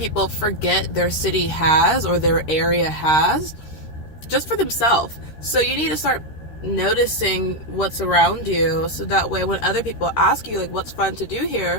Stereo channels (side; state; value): right; late; 13 ms